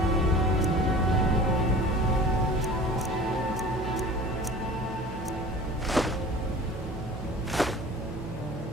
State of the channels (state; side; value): normal; both; correlation 0.42